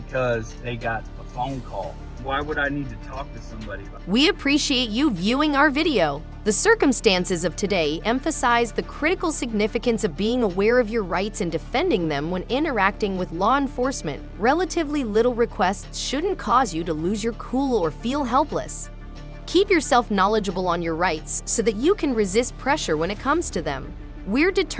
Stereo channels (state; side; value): identical; both; correlation 1.00